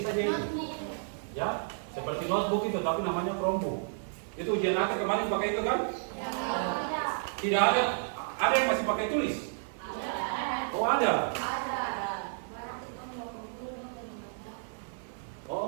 saja itu, ya, seperti notebook itu, tapi namanya Chromebook. Itu ujian akhir kemarin pakai itu kan? Tidak ada. Ada yang masih pakai tulis? Oh ada.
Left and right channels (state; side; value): silent; left; 56 dB below the other